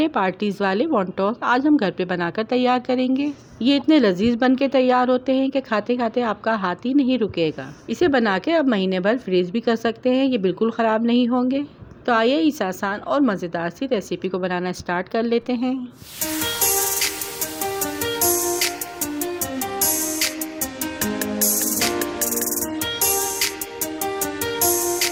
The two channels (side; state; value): both; identical; correlation 1.00